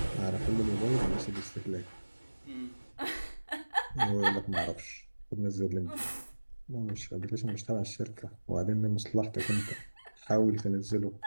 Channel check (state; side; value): inverted; both; correlation -1.00